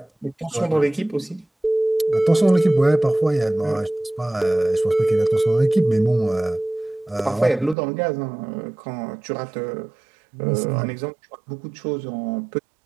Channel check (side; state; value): left; drops out; at 7.8 s